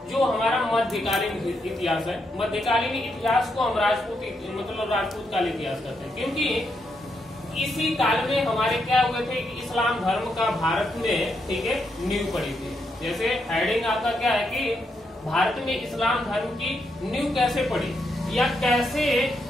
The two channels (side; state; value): both; normal; correlation 0.80